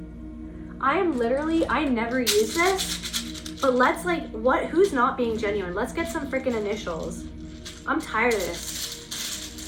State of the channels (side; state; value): both; identical; correlation 1.00